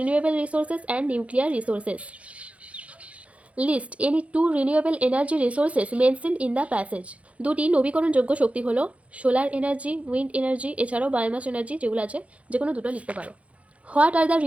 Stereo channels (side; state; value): left; late; 0.064 ms